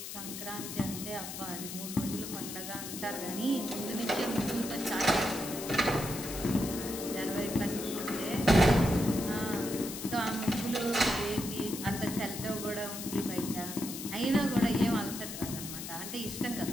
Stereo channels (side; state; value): left; noise; hiss, 8 dB below the sound